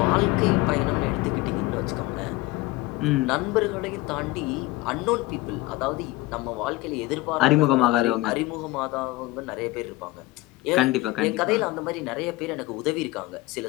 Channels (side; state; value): right; quieter; 19.4 dB